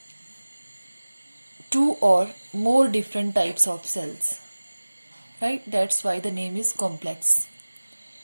two or more different types of cells. Right? That's why the name is complex.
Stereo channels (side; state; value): both; inverted; correlation -1.00